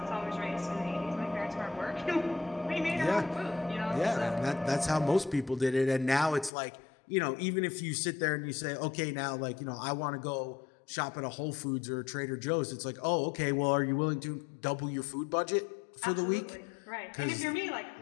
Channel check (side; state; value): right; drops out; at 6.5 s